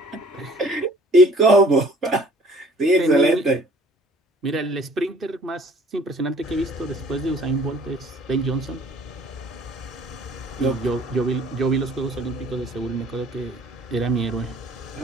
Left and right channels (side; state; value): both; normal; correlation 0.54